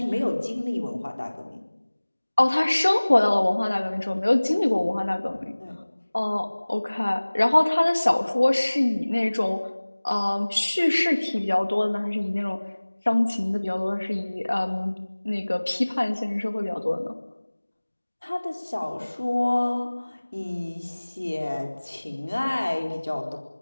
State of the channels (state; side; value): inverted; both; correlation -1.00